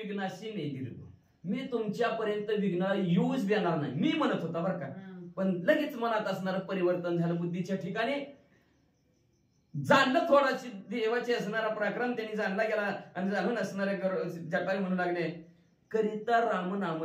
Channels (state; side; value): identical; both; correlation 1.00